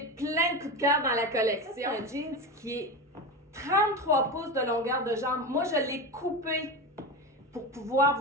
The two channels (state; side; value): normal; both; correlation 0.22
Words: plein de coups de cœur dans la collection. C'est un jeans qui est 33 pouces de longueur de jambe. Moi, je l'ai coupé pour pouvoir